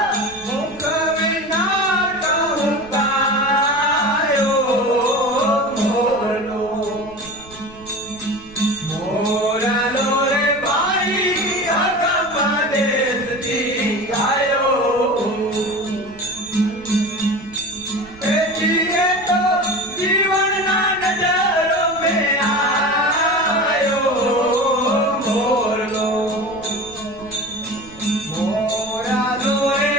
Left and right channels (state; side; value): noise; right; rumble, 21 dB below the sound